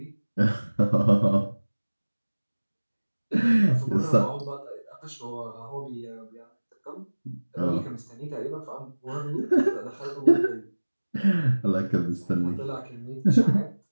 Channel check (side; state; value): both; inverted; correlation -1.00